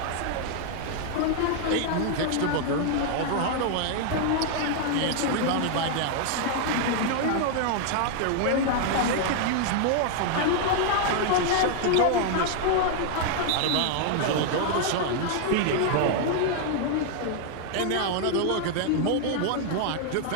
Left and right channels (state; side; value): different; both; correlation 0.00